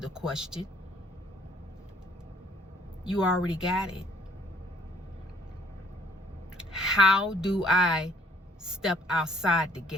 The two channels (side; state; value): both; normal; correlation 0.63